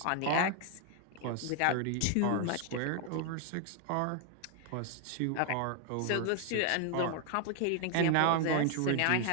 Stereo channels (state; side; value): different; both; correlation 0.00